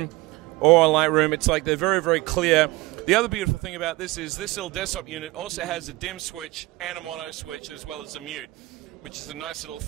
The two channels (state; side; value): quieter; left; 20.7 dB